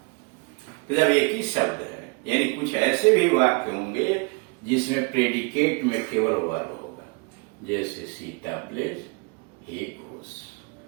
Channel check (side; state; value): left; quieter; 31.6 dB